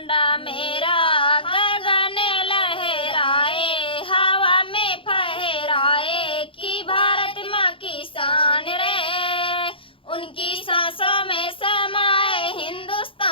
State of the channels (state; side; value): late; right; 0.25 ms